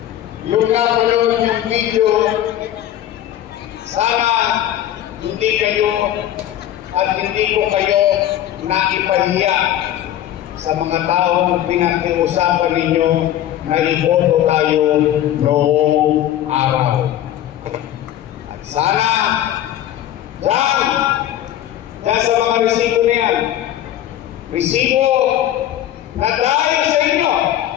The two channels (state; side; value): quieter; right; 12.1 dB